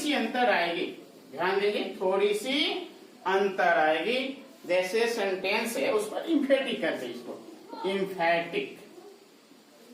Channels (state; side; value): identical; both; correlation 1.00